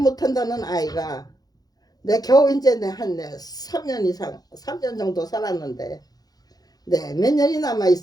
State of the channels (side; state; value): right; late; 0.19 ms